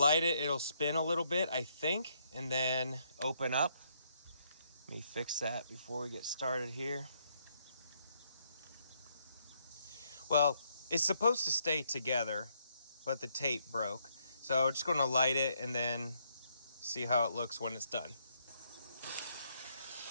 it. It'll spin a little bit, I think, and then open up. Let me fix that before we get started here. Well, it's supposed to stay together, but the tape broke. So I'm just going to light it and then see how it looks when it's done.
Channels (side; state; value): both; inverted; correlation -0.73